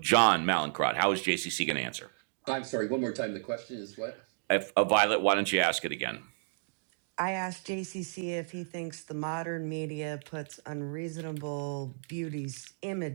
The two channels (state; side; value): silent; left; digital silence